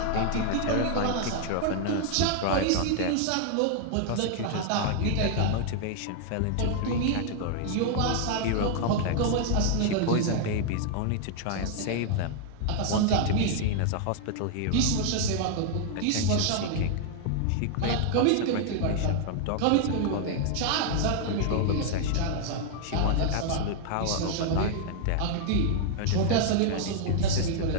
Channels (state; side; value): different; both; correlation 0.00